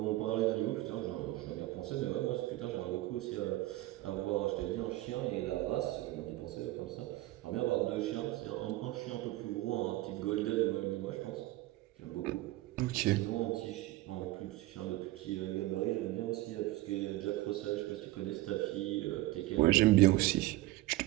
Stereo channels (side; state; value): left; quieter; 17.7 dB